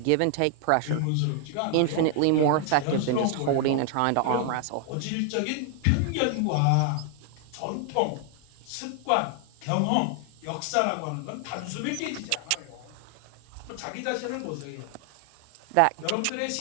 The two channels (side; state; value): both; different; correlation 0.00